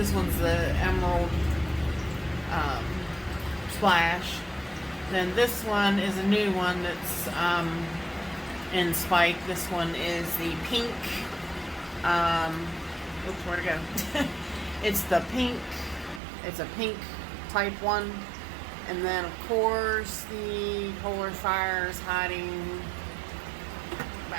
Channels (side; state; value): left; drops out; at 16.2 s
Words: one's the emerald splash. Then this one is a new one that's in spike. This one is the pink. Oops, where'd it go? It's the pink. It's a pink type one. And then, of course, the polar fire is hiding